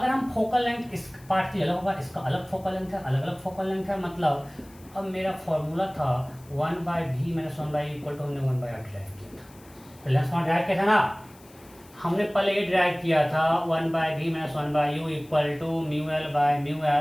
हम focal length इस पार्ट की अलग होगा, इसका अलग फोकल लेंथ है, अलग अलग फोकल लेंथ है, मतलब अब मेरा फॉर्मूला था 1/v - 1/u इक्वल टू हमने 1/r ड्राइव किया था। लेंस फॉर्म ड्राइव किया था ना, हमने पहले ये ड्राइव किया था 1/v - 1/u equal to mu L by mu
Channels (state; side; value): noise; left; hiss, 26 dB below the sound